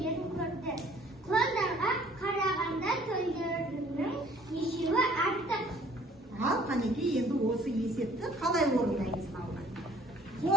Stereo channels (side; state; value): both; normal; correlation 0.56